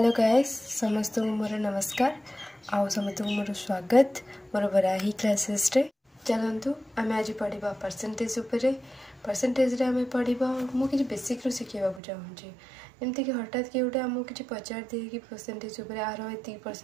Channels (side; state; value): left; drops out; at 12.0 s